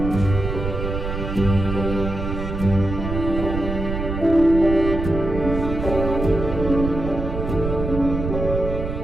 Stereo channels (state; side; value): noise; right; rumble, 4 dB below the sound